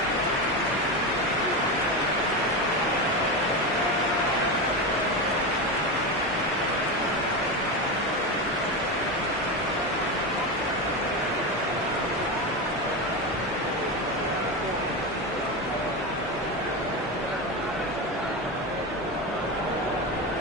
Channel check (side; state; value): both; normal; correlation 0.17